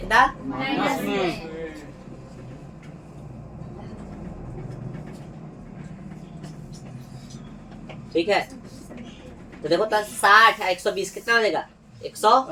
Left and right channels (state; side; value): identical; both; correlation 1.00